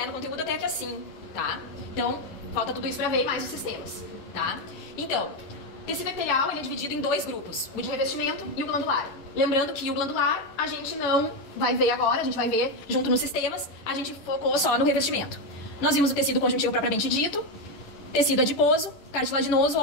no conteúdo até aqui assim, tá? Então, falta tudo isso pra ver mais os sistemas, tá? Então, o tecido epitelial ele é dividido em 2 grupos, o de revestimento e o glandular. Lembrando que o glandular a gente não vai ver agora, a gente vai ver junto nos sistemas, a gente focou só no revestimento. Nós vimos o tecido conjuntivo propriamente dito, tecido adiposo, cartilaginoso,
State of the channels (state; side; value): late; right; 11 ms